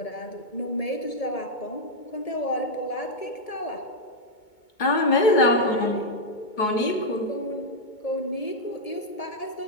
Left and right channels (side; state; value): right; late; 2.2 ms